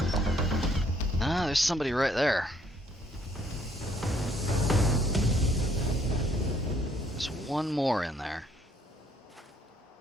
Ah, there's somebody right there. There's one more in there.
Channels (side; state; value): both; normal; correlation 0.65